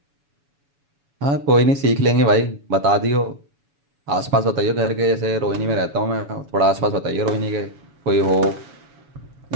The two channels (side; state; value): left; late; 7.2 ms